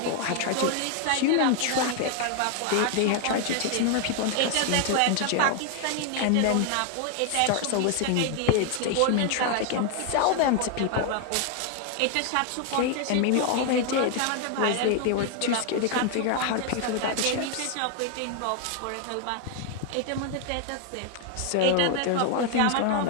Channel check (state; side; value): different; both; correlation 0.00